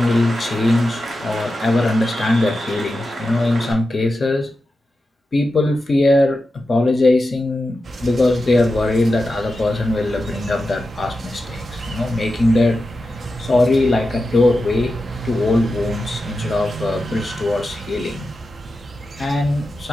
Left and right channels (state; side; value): normal; both; correlation 0.91